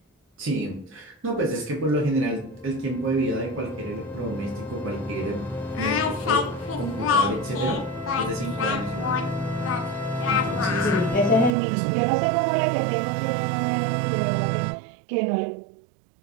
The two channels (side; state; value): left; drops out; at 11.6 s